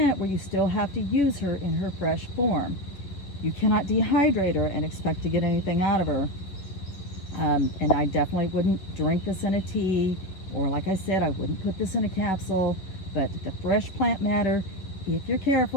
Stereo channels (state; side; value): late; right; 11 ms